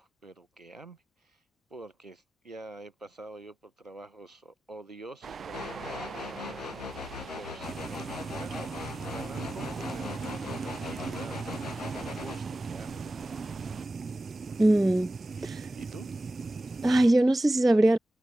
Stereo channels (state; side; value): normal; both; correlation 0.95